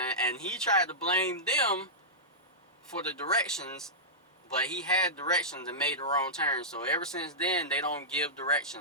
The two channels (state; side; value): normal; both; correlation -0.14